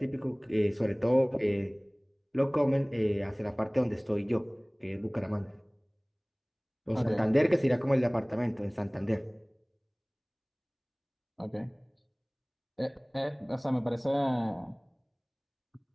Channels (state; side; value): identical; both; correlation 1.00